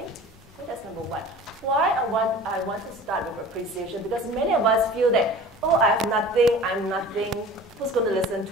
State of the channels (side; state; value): both; normal; correlation 0.42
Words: So that's number 1. Why I want to start with appreciation? Because many of us feel that, oh, I have nothing, I'm nothing, who's going to listen